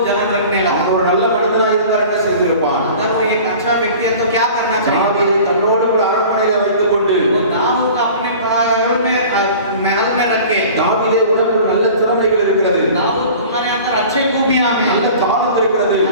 जलन रखने लगा। அவன் ஒரு நல்ல மனிதனாக இருந்தால் என்ன செய்திருப்பான்? अगर वो एक अच्छा व्यक्ति है तो क्या करना चाहिए? தாவீதை தன்னோடு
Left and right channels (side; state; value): both; inverted; correlation -0.42